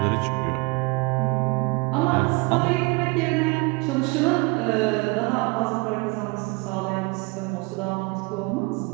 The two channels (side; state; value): left; quieter; 27.2 dB